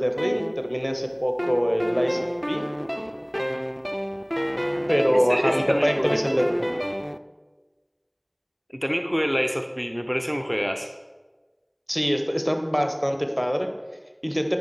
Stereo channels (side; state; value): both; identical; correlation 1.00